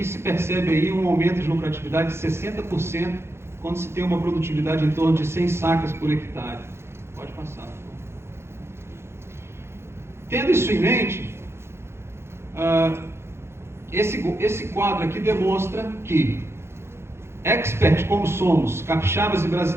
se percebe aí um aumento de lucratividade de 60% quando se tem uma produtividade em torno de 100 sacas por hectare. Pode passar. Tendo isso em mente, esse quadro aqui demonstra que, expert como somos, capixabas e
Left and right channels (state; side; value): late; left; 0.12 ms